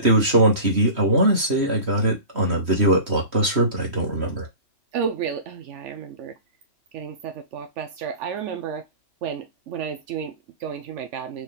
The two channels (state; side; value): late; left; 3.1 ms